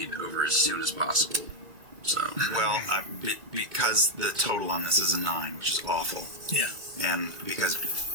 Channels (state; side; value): late; left; 2.2 ms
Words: over as soon as possible. So Well, because the total on this is a 9, which is awful. Yeah. And because